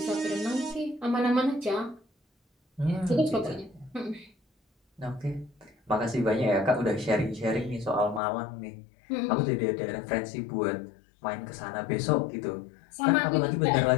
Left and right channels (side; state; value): right; drops out; at 8.2 s